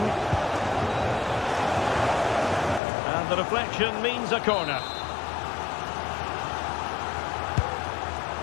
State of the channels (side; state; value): right; drops out; at 2.8 s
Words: And the deflection means a corner.